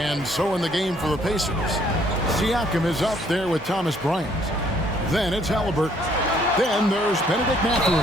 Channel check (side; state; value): both; normal; correlation 0.64